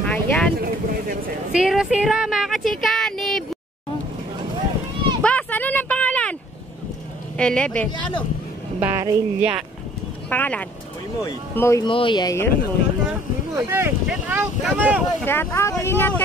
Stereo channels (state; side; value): normal; both; correlation 0.56